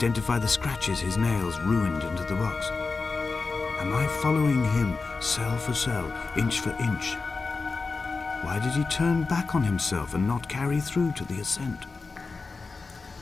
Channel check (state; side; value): quieter; right; 4.2 dB